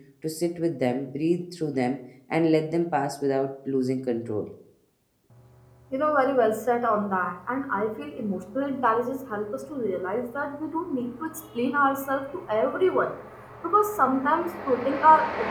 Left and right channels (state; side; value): identical; both; correlation 1.00